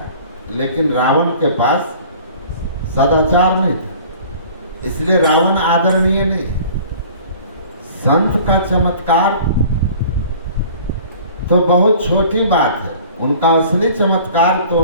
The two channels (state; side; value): inverted; both; correlation -0.47